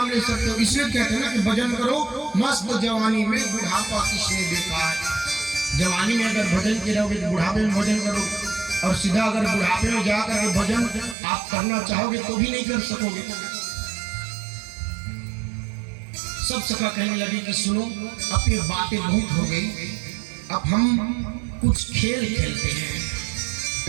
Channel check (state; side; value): drops out; left; at 11.2 s